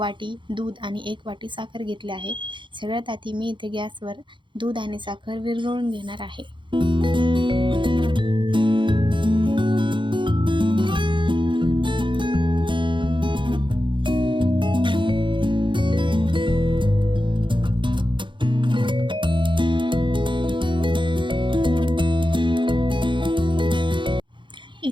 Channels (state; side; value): late; left; 0.23 ms